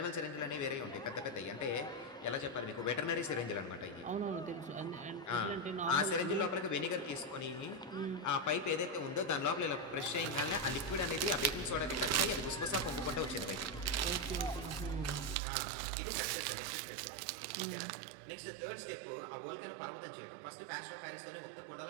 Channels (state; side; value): drops out; left; at 15.4 s